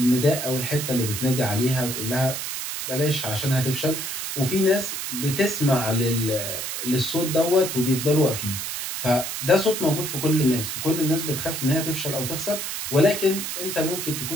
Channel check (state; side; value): noise; right; hiss, 4 dB below the sound